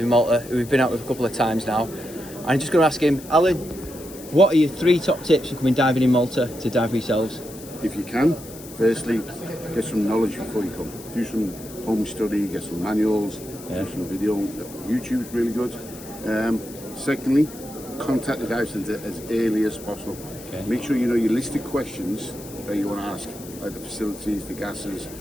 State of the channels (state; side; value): noise; left; hiss, 17 dB below the sound